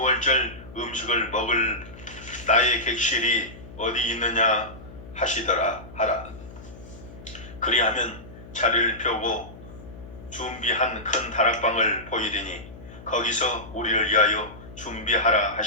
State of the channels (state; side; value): noise; left; hum, 17 dB below the sound